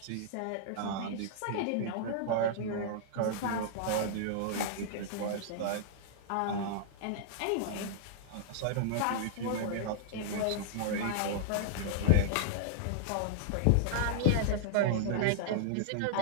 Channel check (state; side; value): different; both; correlation -0.01